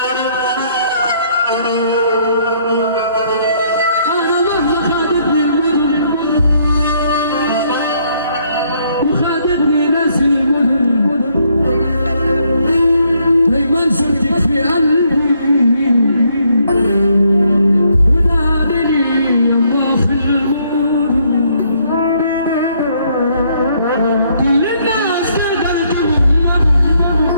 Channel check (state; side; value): inverted; both; correlation -0.69